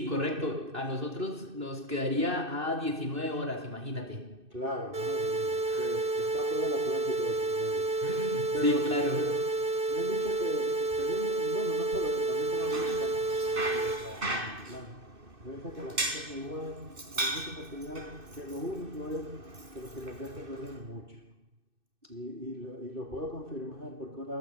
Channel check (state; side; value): late; left; 2.6 ms